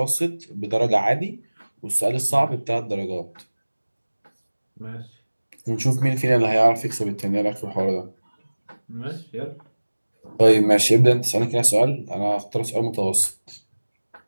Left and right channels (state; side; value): inverted; both; correlation -1.00